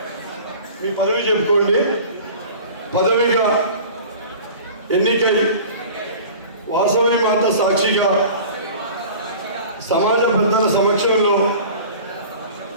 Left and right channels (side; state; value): both; inverted; correlation -0.41